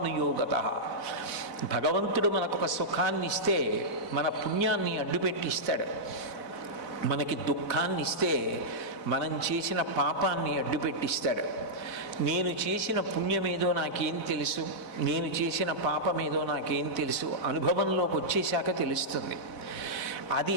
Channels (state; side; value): late; right; 4.0 ms